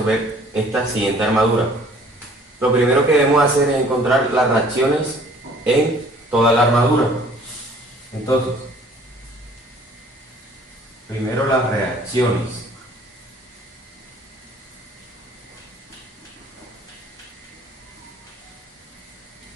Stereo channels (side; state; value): both; normal; correlation 0.54